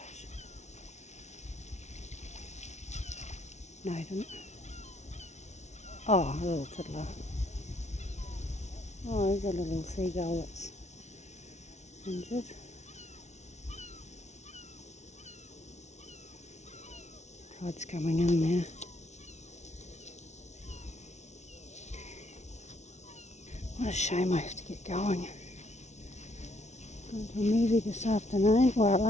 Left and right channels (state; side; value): late; right; 0.32 ms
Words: No, he didn't. Oh, a little tiddler. Oh, there's a little seagull that's injured. Tide's coming in now. What a shame I have to get going. Going to a movie this afternoon, well, at